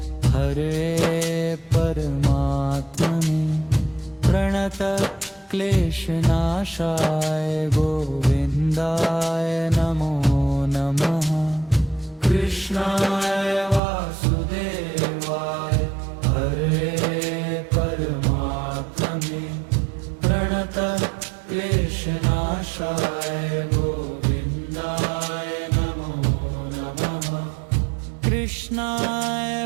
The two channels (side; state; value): left; drops out; at 13.8 s